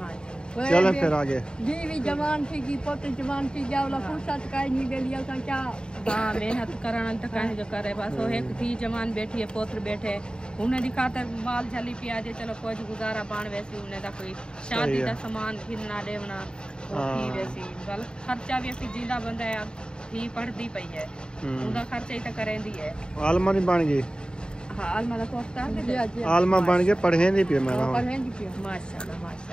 जी चलो फिर आगे। बीवी जवान थी की पोते जवान थी जावला फुर्सत काई नहीं ले लिया था क्या। हाँ मेहनत करना तो कहीं जो करे बस। वो एक थी जवान बैठी है, पोत्र बैठे, उन्हें दिखाता माल झली पियाजे चलो कोई गुजारा पान वैसी उन्हें दा कोई शादी का सामान घिरना देवना थी वैसी गल खर्चा भी असी जिंदा बंदा है थी पढ़ती पई है, उनका खर्चा ही तो करेंदी है। आलमा नहीं बन गई। हाँ आलमा दा कोर्स कर आलमा बन के पढ़े नहीं पे मेरा। माशाल्लाह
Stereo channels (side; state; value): right; late; 0.049 ms